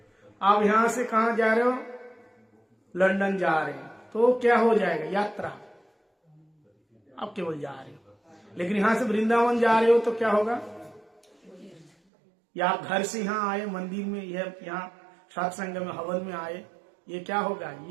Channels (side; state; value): left; drops out; at 11.9 s